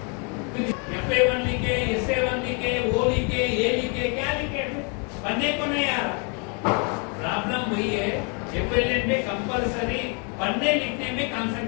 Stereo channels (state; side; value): quieter; right; 36.2 dB